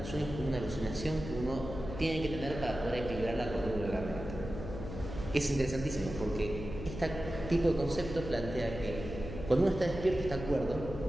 sueños como una alucinación que uno tiene que tener para poder equilibrar la cordura de la mente. Es interesantísimo porque este tipo de concepto plantea que cuando uno está despierto está cuerdo,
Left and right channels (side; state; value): left; noise; hum, 9 dB below the sound